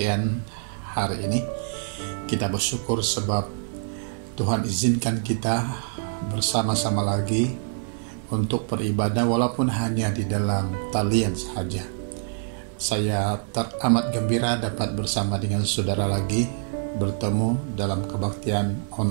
hari ini. Kita bersyukur sebab Tuhan izinkan kita bersama-sama lagi untuk beribadah walaupun hanya di dalam talian saja. Saya teramat gembira dapat bersama dengan saudara lagi bertemu dalam kebaktian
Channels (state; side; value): silent; left; digital silence